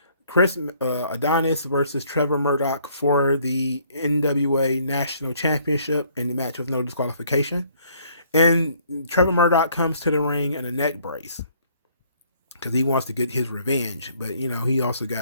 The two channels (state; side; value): inverted; both; correlation -0.63